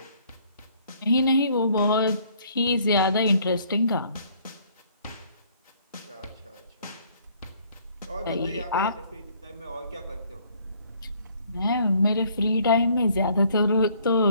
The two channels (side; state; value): both; inverted; correlation -0.61